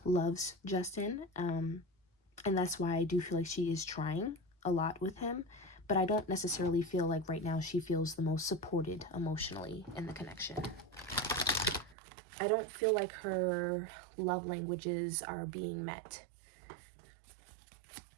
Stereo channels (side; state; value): left; drops out; at 12.0 s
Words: loves Justin, and that's why I do feel like she is trying a lot with him, but I don't necessarily feel like right now she feels the most supported emotionally in the connection. I don't feel like her love languages are being met.